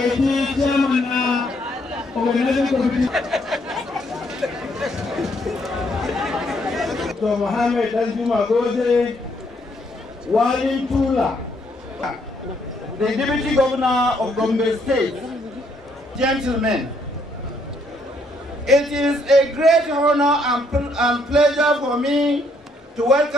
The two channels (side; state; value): both; normal; correlation 0.71